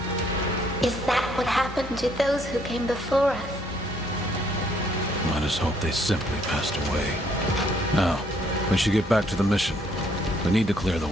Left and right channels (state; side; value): normal; both; correlation 0.67